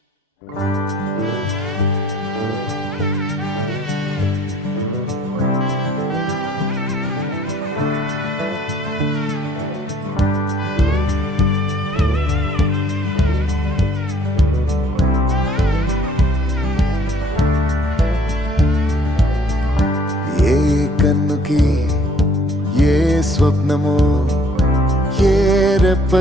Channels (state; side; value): normal; both; correlation 0.58